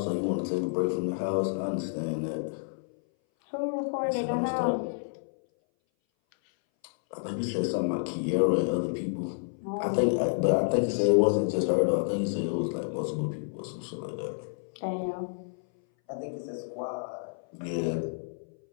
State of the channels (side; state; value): right; silent; 58 dB below the other